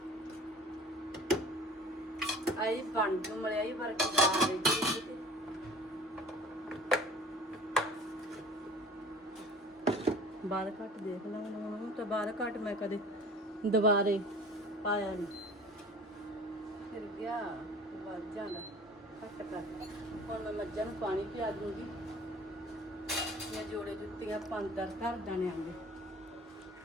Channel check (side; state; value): both; normal; correlation 0.45